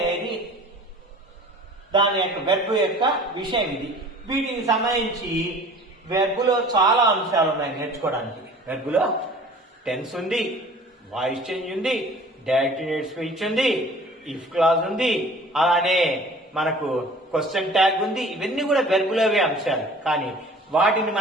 దాని యొక్క వెర్బ్ యొక్క విషయం ఇది. వీటికి సంబంధించి వెర్బులో చాలా అంశాలు ఉన్నాయి నేర్చుకోవడానికి. వెర్బులో టెన్స్ ఉంది, వాయిస్ చేంజ్ ఉంది, డైరెక్ట్ స్పీచ్ ఉంది, ఇఫ్ క్లాజ్ ఉంది, అలానే మనకు క్వశ్చన్ ట్యాగ్ ఉంది. ఇవన్నీ కూడా వెర్బులోవే అంశాలు, కానీ వాటిని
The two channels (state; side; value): normal; both; correlation 0.47